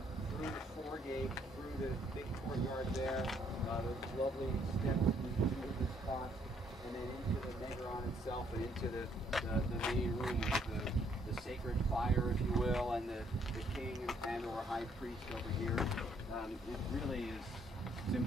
through the foregate, through the big courtyard there, those lovely steps into the spots, and then into the Megaron itself, and into the main room with the sacred fire, if you will, and the king and or high priest over here. It really is, it's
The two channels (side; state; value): both; normal; correlation 0.68